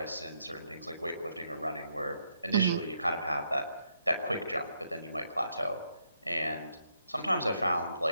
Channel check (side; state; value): both; inverted; correlation -0.77